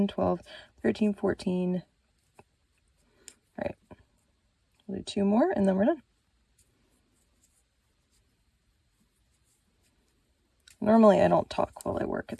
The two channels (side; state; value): both; identical; correlation 1.00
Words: 12, 13, 14. All right, we'll do 2 more and then we're done. Normally I don't talk while I work.